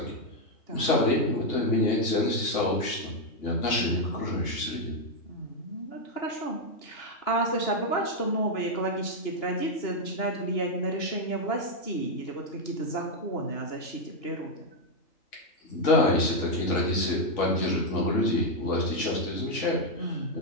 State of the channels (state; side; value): late; right; 3.5 ms